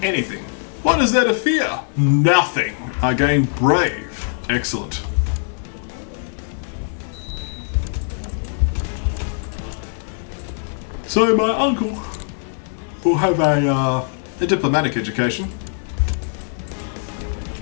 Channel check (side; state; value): right; silent; digital silence